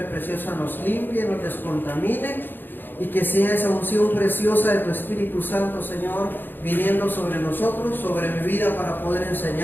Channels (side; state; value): right; late; 0.094 ms